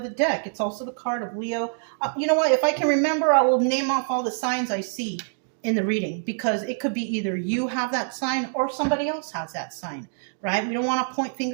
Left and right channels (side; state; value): left; silent; digital silence